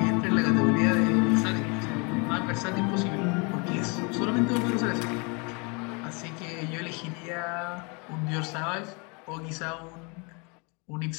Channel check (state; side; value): quieter; right; 31.9 dB